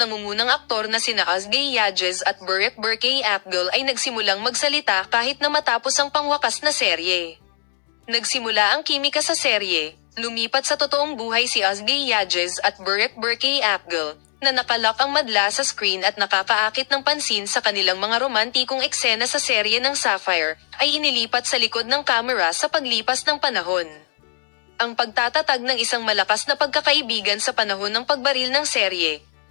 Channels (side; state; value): right; silent; 58 dB below the other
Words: aktor na sina Ozge Yajez at Burek Berkay Apgul ay nagsimulang magsalita kahit na matapos ang pangwakas na serye. Nagsimula ang kimika sa serye, lumipat sa totoong buhay si Ozge Yajez at Burek Berkay Apgul, na nakalak ang madla sa screen at nakakaakit ng pansin sa kanilang mga romantikong eksena sa serye ng Sapphire, ay inilipat sa likod ng kamera sa paglipas ng panahon. Ang pagtatatag ng isang malakas na pagkakaibigan sa panahon ng pagbaril ng serye,